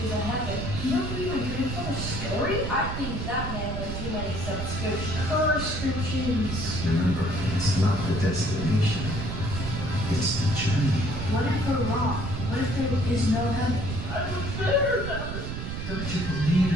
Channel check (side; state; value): right; noise; rumble, 5 dB below the sound